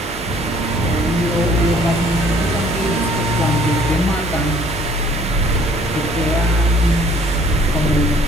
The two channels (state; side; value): normal; both; correlation 0.58